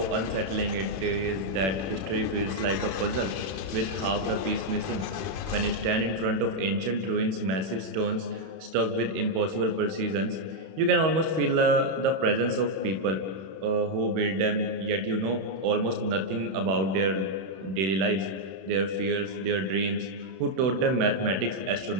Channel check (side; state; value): left; late; 31 ms